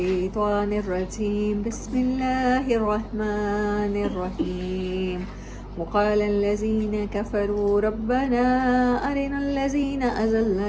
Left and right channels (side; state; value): both; identical; correlation 1.00